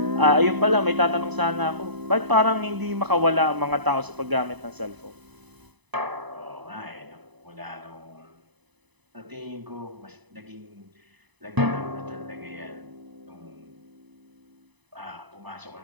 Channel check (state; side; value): late; left; 1.0 ms